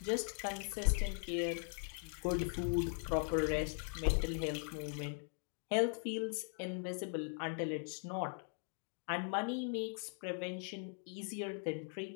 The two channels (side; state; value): right; silent; 51 dB below the other